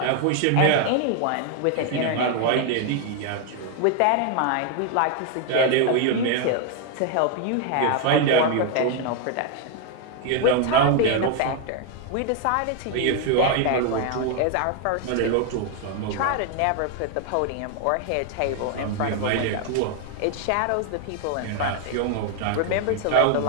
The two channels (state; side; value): different; both; correlation 0.00